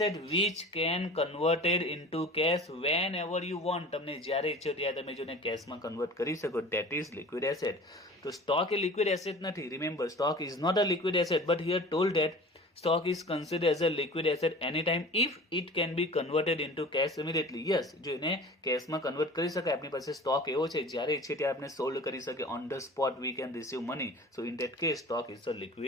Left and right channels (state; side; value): normal; both; correlation 0.41